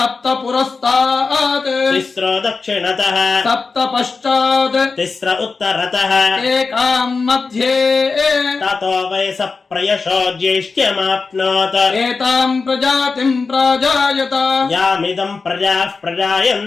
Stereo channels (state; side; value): quieter; right; 4.4 dB